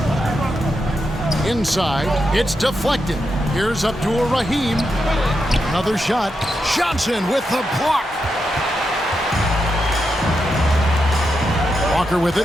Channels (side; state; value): both; normal; correlation 0.85